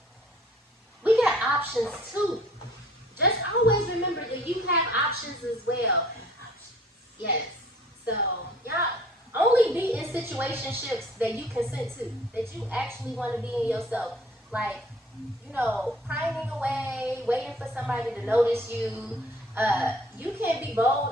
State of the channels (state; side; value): normal; both; correlation 0.54